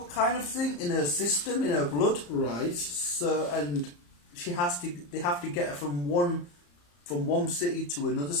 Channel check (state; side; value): late; right; 34 ms